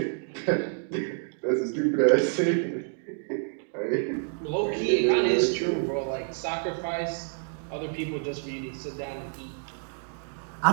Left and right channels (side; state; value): left; silent; 59 dB below the other